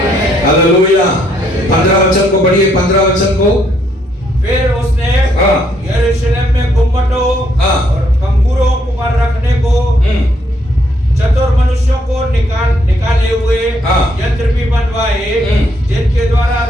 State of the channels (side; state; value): both; normal; correlation 0.71